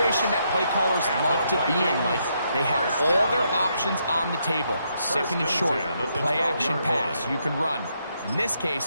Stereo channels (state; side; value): inverted; both; correlation -0.77